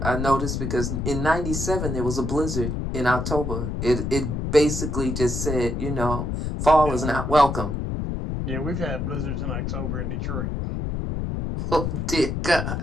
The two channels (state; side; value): noise; left; rumble, 2 dB below the sound